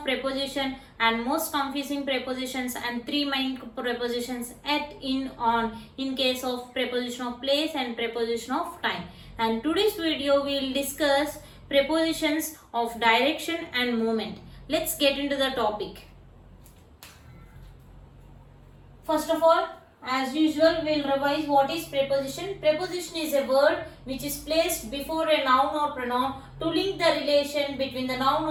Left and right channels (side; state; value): both; identical; correlation 1.00